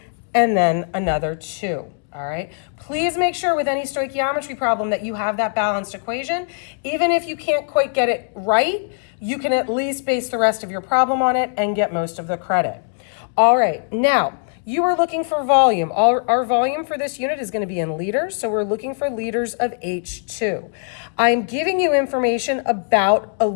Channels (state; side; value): silent; right; digital silence